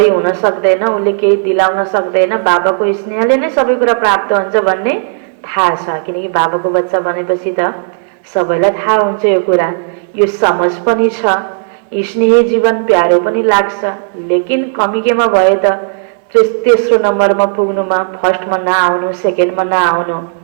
हुन सक्दैन, उसले केही दिलाउन सक्दैन। बाबाको स्नेहले नै सबै कुरा प्राप्त हुन्छ भन्ने थाहा छ, किनकि बाबाको बच्चा बनेपछि त सबैलाई थाहा हुन्छ यो कुरा, यो समझ पनि छ। स्नेही जीवन प्यारो पनि लाग्छ, लेकिन कमी केमा भए त तेस्रो नम्बरमा पुग्नुमा फर्स्टमा नआउनु, सेकेन्डमा नआउनु,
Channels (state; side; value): silent; left; digital silence